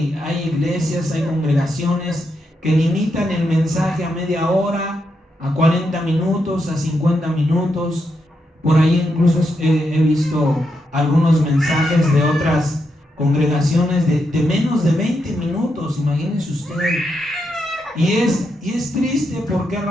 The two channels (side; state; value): both; normal; correlation 0.82